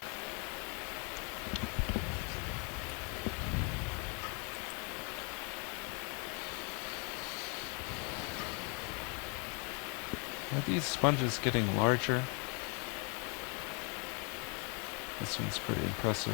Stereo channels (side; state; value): right; quieter; 35.2 dB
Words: Are these sponges getting larger? This one's pretty